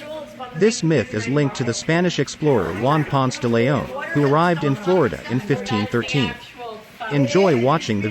This myth is linked to the Spanish explorer Juan Ponce de León, who arrived in Florida in 1513. Enjoy watching the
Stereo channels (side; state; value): both; identical; correlation 1.00